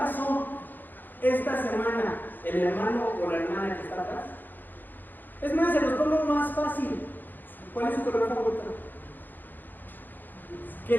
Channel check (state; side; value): late; right; 0.088 ms